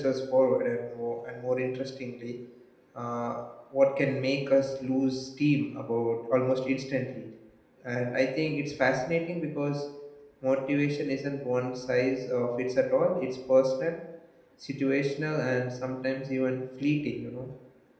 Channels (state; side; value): identical; both; correlation 1.00